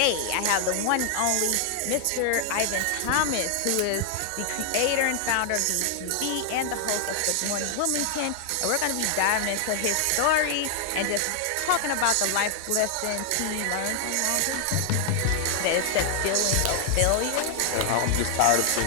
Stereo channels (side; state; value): both; different; correlation 0.00